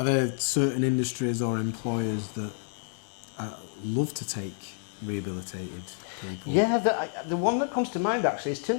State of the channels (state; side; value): silent; right; 59 dB below the other